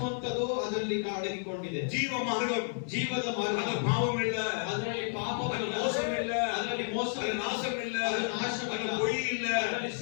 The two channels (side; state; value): right; silent; digital silence